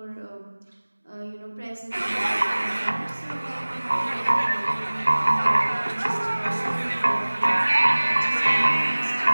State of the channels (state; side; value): inverted; both; correlation -1.00